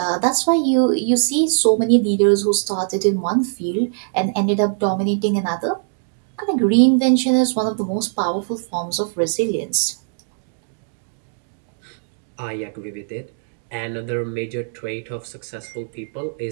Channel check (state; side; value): silent; left; digital silence